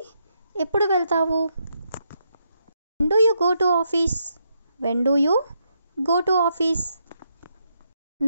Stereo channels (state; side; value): inverted; both; correlation -0.79